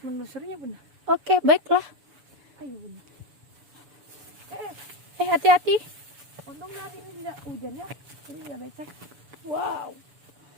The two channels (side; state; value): left; late; 7.0 ms